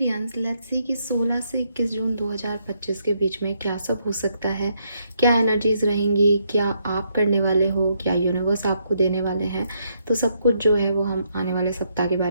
let's see कि 16 से 21 जून 2025 के बीच में क्या सब हो सकता है, क्या एनर्जीज रहेंगी, क्या आप करने वाले हो, क्या यूनिवर्स आपको देने वाले हैं। तो सब कुछ जो है वो हम आने वाले सप्ताह के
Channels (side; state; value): both; inverted; correlation -0.74